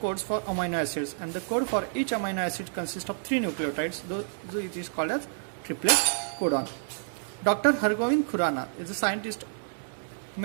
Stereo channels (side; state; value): left; silent; digital silence